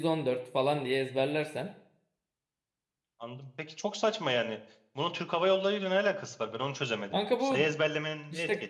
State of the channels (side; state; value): both; identical; correlation 1.00